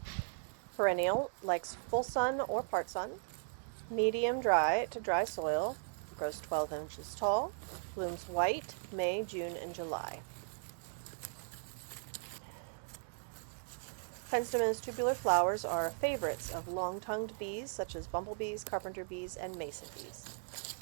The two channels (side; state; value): left; silent; digital silence